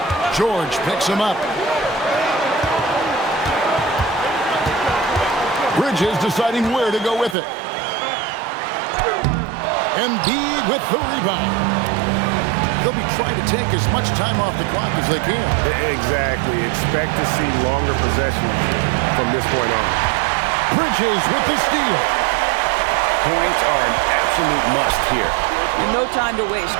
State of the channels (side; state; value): left; drops out; at 7.4 s